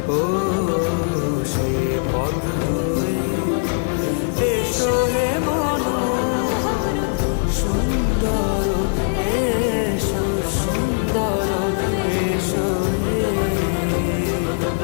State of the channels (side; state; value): right; silent; 65 dB below the other